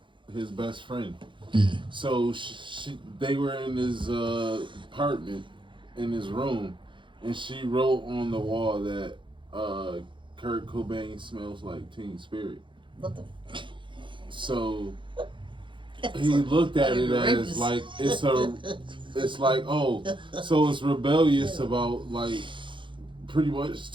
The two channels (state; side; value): late; left; 0.24 ms